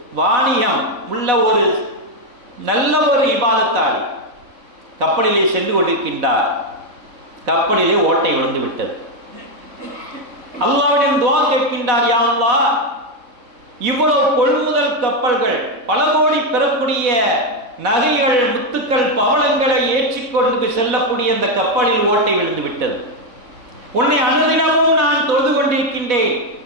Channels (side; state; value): left; late; 4.0 ms